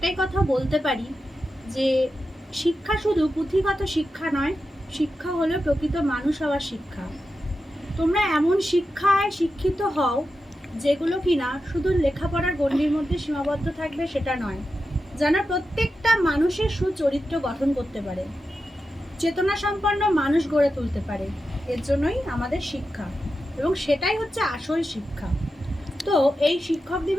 কথা বলতে পারি যে শিক্ষা শুধু পুঁথিগত শিক্ষা নয়, শিক্ষা হলো প্রকৃত মানুষ হওয়ার শিক্ষা। তোমরা এমন শিক্ষায় শিক্ষিত হও যেগুলো কিনা শুধু লেখাপড়ার গণ্ডির মধ্যে সীমাবদ্ধ থাকবে সেটা নয়, যেন প্রত্যেকটা মানুষের সুচরিত্র গঠন করতে পারে, চেতনা সম্পন্ন মানুষ গড়ে তুলতে পারে। এর জন্যই আমাদের শিক্ষা, এবং সেটাই হচ্ছে আসল শিক্ষা। তো এই শিক্ষক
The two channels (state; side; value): normal; both; correlation 0.90